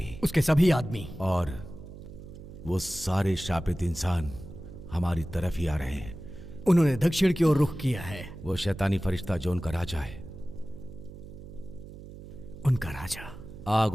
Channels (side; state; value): right; noise; hum, 15 dB below the sound